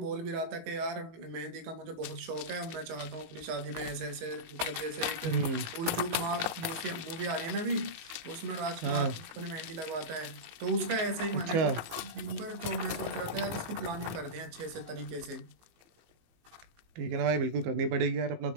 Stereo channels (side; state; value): left; late; 18 ms